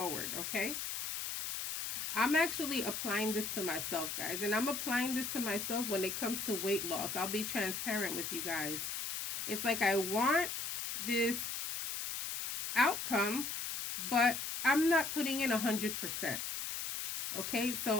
okay? I'm actually applying this to myself, guys. And I'm applying this to myself when it comes to weight loss. I'll be transparent with you guys. It's like I want this outcome, but I'm not putting in 100%. Okay,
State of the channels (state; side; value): noise; left; hiss, 4 dB below the sound